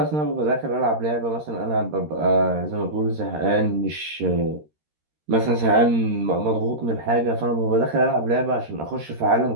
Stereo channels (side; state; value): left; late; 13 ms